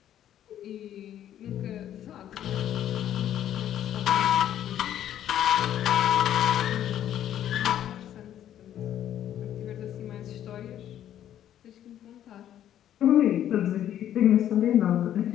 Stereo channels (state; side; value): quieter; right; 11.0 dB